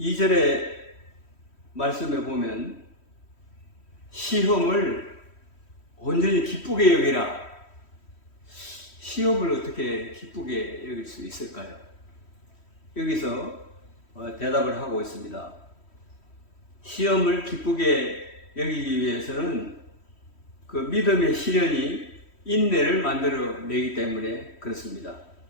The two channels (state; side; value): late; right; 3.1 ms